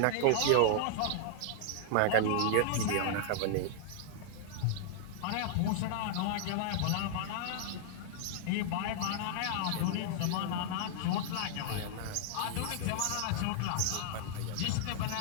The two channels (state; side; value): different; both; correlation -0.01